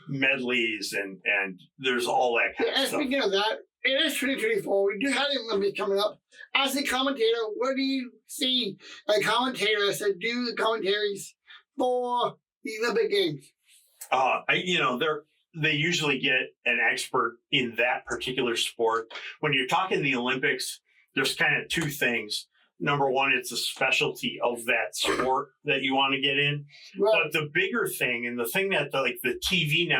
medleys, and there's all that kind of stuff. Speaking of that, it is 2024. We do have the Olympics coming up. As a commentator, what do you see a commentator to do the commentaries for the Olympic Games? They usually get an expert in that particular sport. When you're talking the Olympics, there's kind of two things. Number one, it's a specialty of that sport that you want to get in. Right. But the bigger thing, and the thing that the TV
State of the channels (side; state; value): both; identical; correlation 1.00